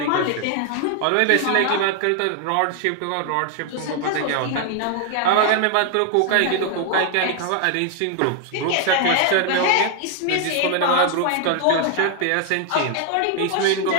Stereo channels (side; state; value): both; different; correlation 0.00